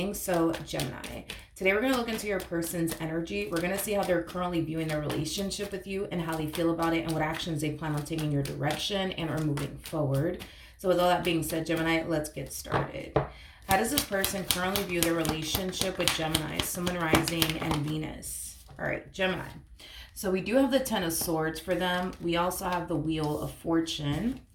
So, Gemini, today we're going to look into your person's energy. We're going to see how they're currently viewing their relationship with you and how they feel about it and what actions they plan on taking in your direction and are moving forward. So, with all that being said, Gemini, let's get started. How does this person currently view their relationship with Gemini, Sun, Moon, Rising, and Venus? All right, Gemini. So, we do have the Ten of Swords for them. We also have the Wheel of Fortune,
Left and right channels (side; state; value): both; identical; correlation 1.00